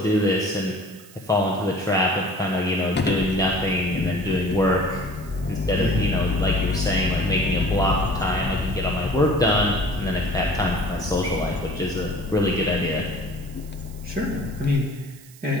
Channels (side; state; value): right; noise; hiss, 22 dB below the sound